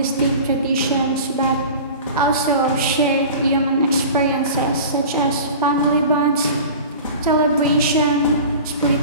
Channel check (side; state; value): both; inverted; correlation -0.37